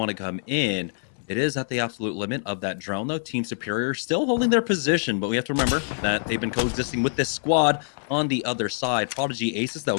to come in. It is at the absolute limit of that drone, though. Team Superior still holding their position, but we have to remember that they've been coexisting with this squad on the other side. Prodigy Aces, though,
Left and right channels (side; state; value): right; silent; digital silence